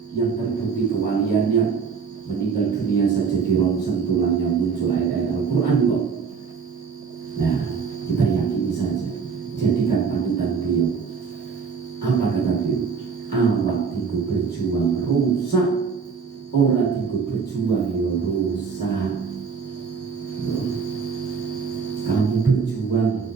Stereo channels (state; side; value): quieter; left; 5.7 dB